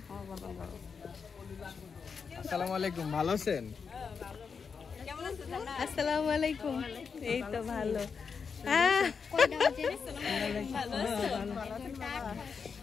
আসসালামু আলাইকুম, ভালো আছেন? আসসালামু আলাইকুম, এই তো ভালো।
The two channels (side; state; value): right; quieter; 5.8 dB